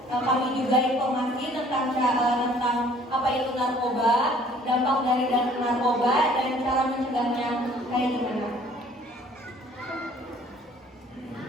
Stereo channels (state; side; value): normal; both; correlation 0.56